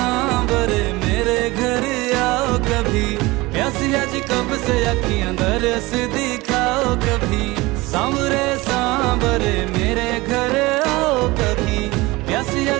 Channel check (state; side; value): quieter; left; 21.5 dB